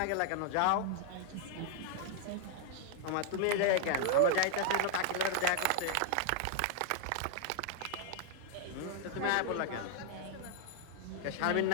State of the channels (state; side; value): different; both; correlation -0.01